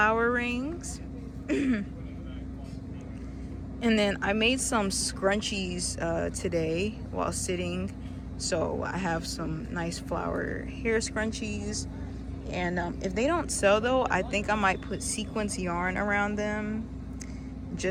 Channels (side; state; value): both; identical; correlation 1.00